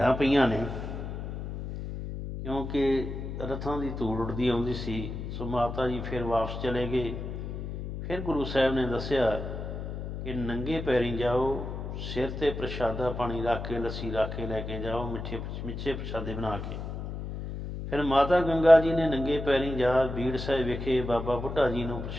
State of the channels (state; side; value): noise; left; hum, 6 dB below the sound